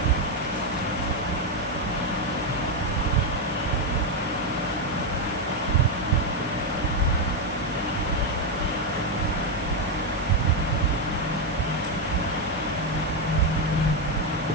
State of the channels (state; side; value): normal; both; correlation 0.05